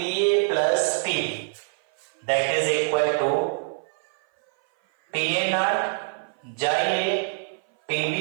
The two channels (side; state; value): left; silent; 56 dB below the other